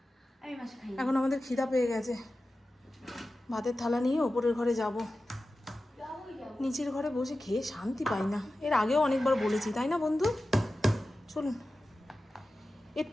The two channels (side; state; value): both; normal; correlation 0.94